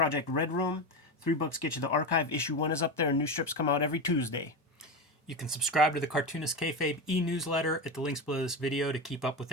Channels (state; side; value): normal; both; correlation 0.18